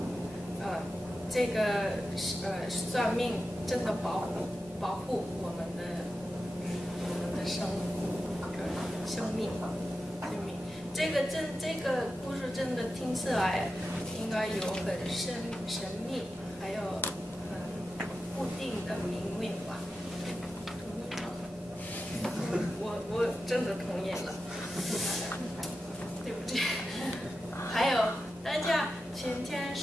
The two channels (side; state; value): both; normal; correlation 0.91